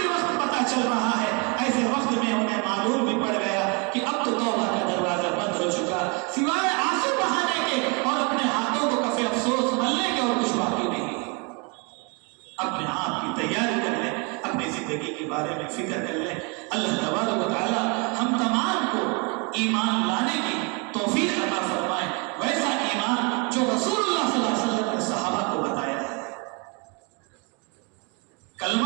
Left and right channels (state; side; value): quieter; left; 31.2 dB